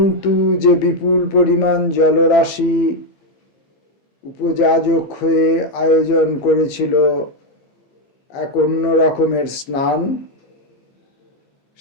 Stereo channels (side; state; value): right; late; 15 ms